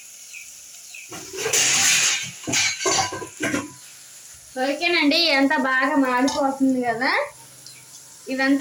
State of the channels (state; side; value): identical; both; correlation 1.00